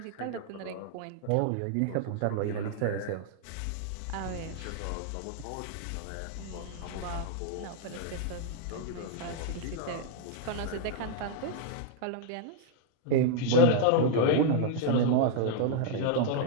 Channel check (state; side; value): different; both; correlation -0.01